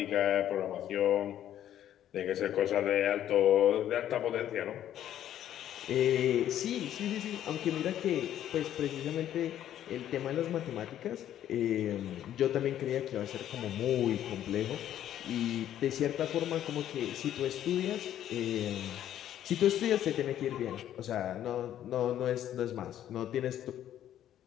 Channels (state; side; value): quieter; right; 11.3 dB